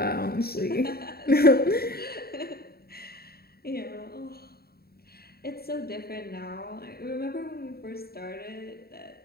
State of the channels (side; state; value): right; late; 0.45 ms